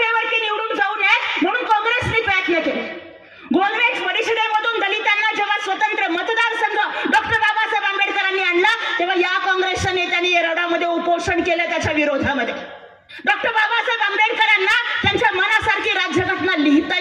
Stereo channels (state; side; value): identical; both; correlation 1.00